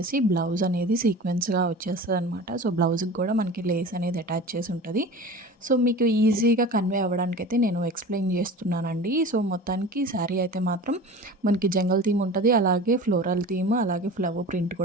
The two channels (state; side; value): normal; both; correlation 0.36